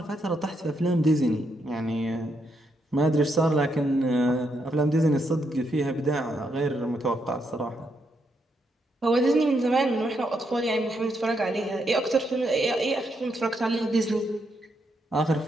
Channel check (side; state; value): both; normal; correlation 0.79